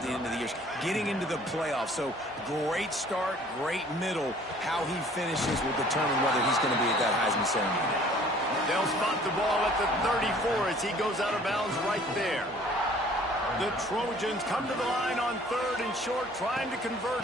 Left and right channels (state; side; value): normal; both; correlation 0.54